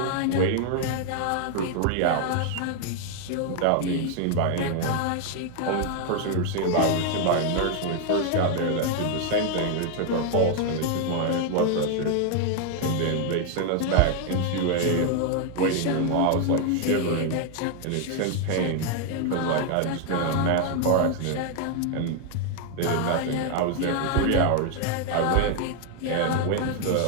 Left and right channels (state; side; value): different; both; correlation 0.00